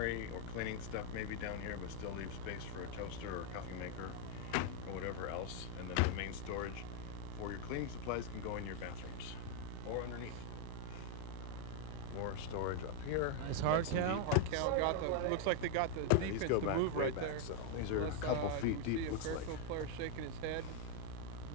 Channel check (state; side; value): different; both; correlation 0.00